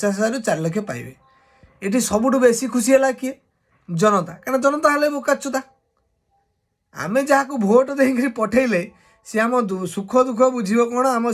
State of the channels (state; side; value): identical; both; correlation 1.00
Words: 4 लाख पाइबे। ये सबुठ बेसी खुशी है किए? जनता। क्या जनता हेल्ले बोकाचुदा। आमे जहाँ को भोट देकर पठेले सी आम सुख दुख बुझे कौन, आम